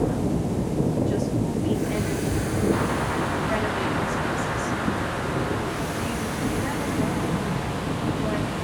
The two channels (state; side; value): identical; both; correlation 1.00